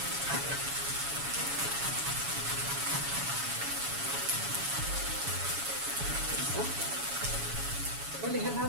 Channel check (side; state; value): left; late; 7.1 ms